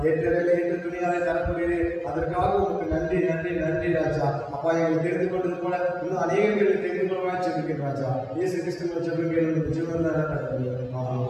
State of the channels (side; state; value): both; identical; correlation 1.00